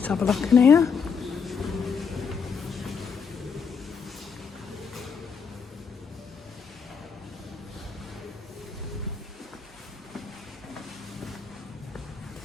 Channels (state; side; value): quieter; right; 6.0 dB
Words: have a look in here.